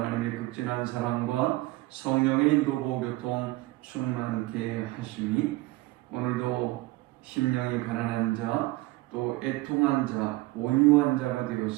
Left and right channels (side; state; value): left; quieter; 19.9 dB